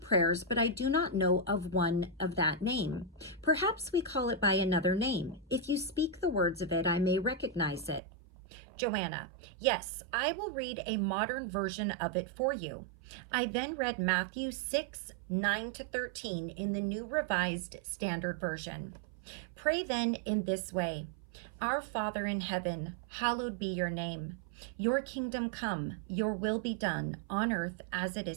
but I do not know of one of that name. Perhaps we call it by another name. If you speak the words of it, I may recognize it. Joanna, yes, I will read a modern version of it for you. I then read Matthew 6:9-13 in the New Revised Standard Version. Pray then in this way. Our Father in heaven, hallowed be your name. Your kingdom come, your will be done on earth as it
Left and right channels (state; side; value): drops out; left; at 8.0 s